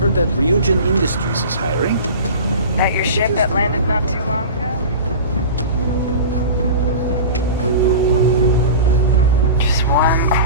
heard that Ryujin Industries is hiring. That your ship that landed not too long ago? Just one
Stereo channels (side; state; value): both; inverted; correlation -0.33